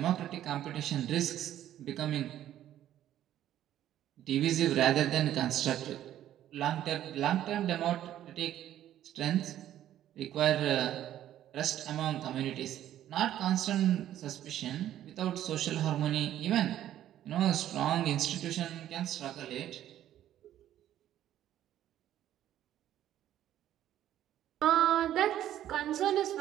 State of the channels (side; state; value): left; quieter; 12.0 dB